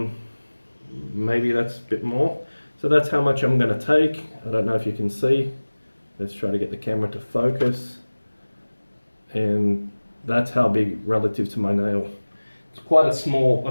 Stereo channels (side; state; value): both; inverted; correlation -1.00